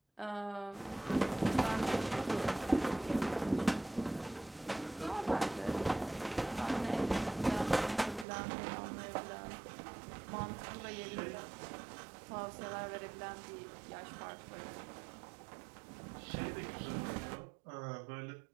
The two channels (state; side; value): drops out; left; at 8.2 s